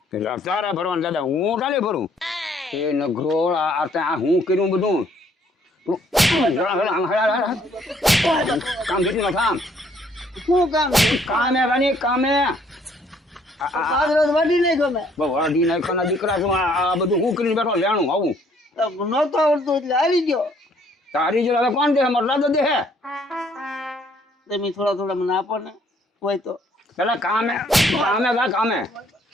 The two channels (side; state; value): both; normal; correlation 0.64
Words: તારે ભરવાનું દાદા, હું ચાલે ભરું? એ નગરો આ હું કર્યું બધું કામ કેટલું કામ શું કામ? કામે રાની કામે પાછળ વાડી નહીં ગમે. વાડી નાખવાના દીકરા છું. આ બધું હું કરીને બેઠો લેણું આવું નહોતો આવડતું એટલે આવી ગયો. તારી જો હવે કોણ દે? મારો દાદો દે હે. તમે થોડા મને આપો ને હોય તો. પેલા કામે જા કામે.